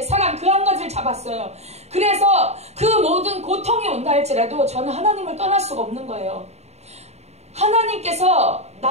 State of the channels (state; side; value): late; left; 0.31 ms